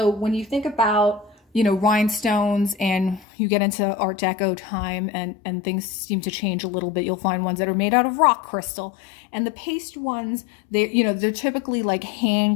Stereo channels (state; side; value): drops out; right; at 3.2 s